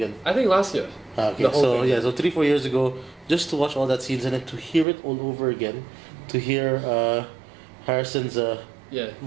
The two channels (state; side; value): drops out; left; at 4.9 s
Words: I think last year. Okay, so 3-4 years ago, just to watch all that scenes and then to hear it all over again, to hear Harrison's